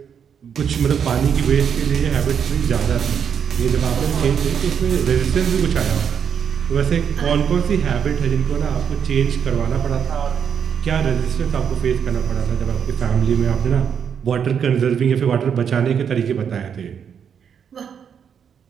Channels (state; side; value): quieter; left; 7.6 dB